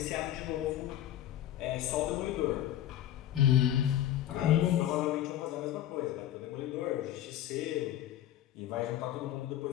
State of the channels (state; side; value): quieter; right; 12.1 dB